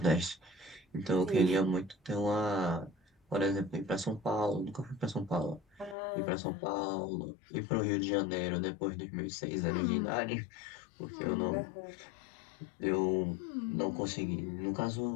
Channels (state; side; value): drops out; right; at 6.0 s